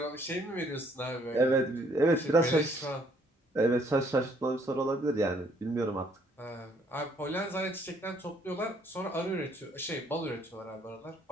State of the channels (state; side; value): normal; both; correlation 0.65